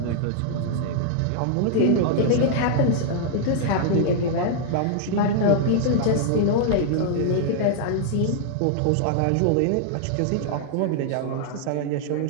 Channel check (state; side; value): different; both; correlation -0.01